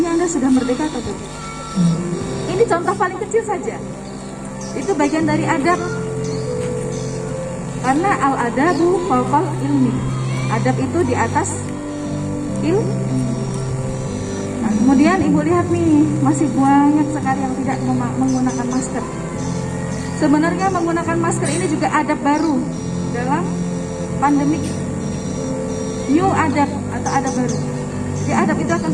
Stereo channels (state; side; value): identical; both; correlation 1.00